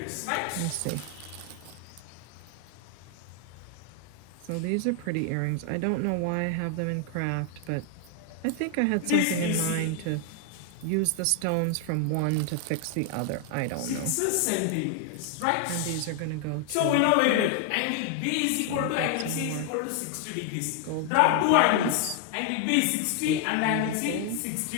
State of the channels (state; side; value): different; both; correlation 0.00